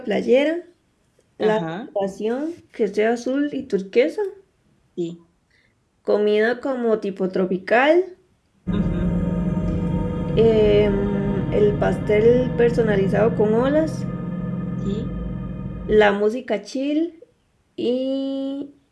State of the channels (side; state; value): both; identical; correlation 1.00